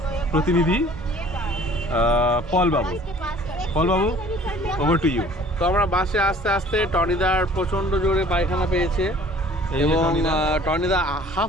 প্রতিনিধি পল বাবু। পল বাবু, ওভার টু ইউ। তো আমরা বাসে আস্তে আস্তে টনিদার প্রচণ্ড জোরে পায়খানা পেয়েছে এই যে এবং টনিদা। টনিদা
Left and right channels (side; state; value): both; normal; correlation 0.51